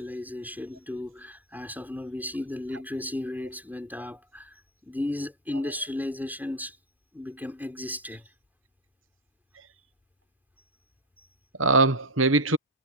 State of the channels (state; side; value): normal; both; correlation 0.07